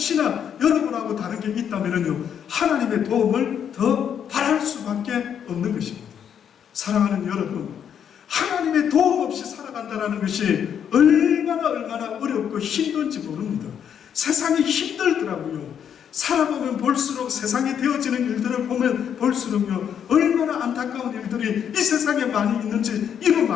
여러분하고 다른 게 있다면요, 하나님의 도움을 더 바랄 수밖에 없는 것입니다. 사랑하는 여러분, 하나님의 도움 없이 살아간다는 것이 얼마나 어렵고 힘든지 모릅니다. 세상이 힘들더라고요. 살아보면 볼수록 세상에 되어지는 일들을 보면 볼수록요, 얼마나 안타까운 일들이 이 세상에 많이 있는지 이루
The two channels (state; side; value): quieter; right; 8.5 dB